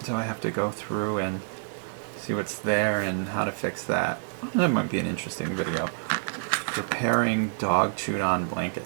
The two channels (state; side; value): silent; left; digital silence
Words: I have to go through and see what's there and how to fix that. That might be an interesting video. Preparing dog chewed on